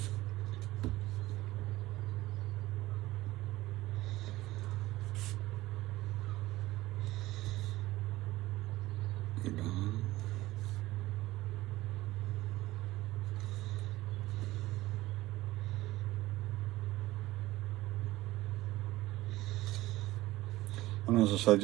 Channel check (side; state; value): left; quieter; 17.5 dB